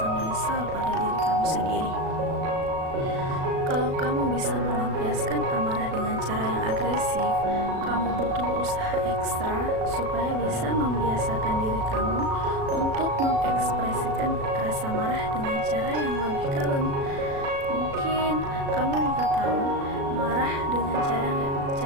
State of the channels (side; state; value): left; late; 36 ms